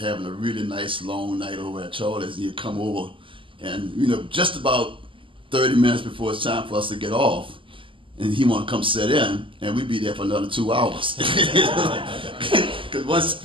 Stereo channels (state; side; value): late; left; 0.25 ms